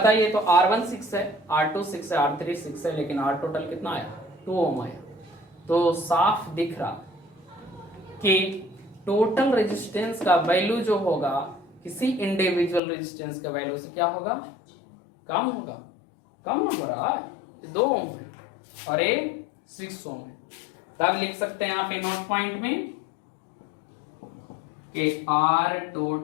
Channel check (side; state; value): right; drops out; at 12.8 s